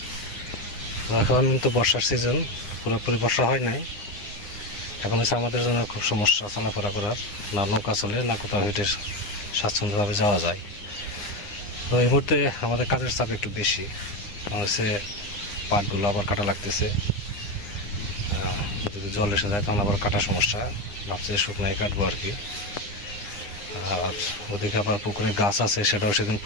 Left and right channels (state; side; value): late; right; 9.8 ms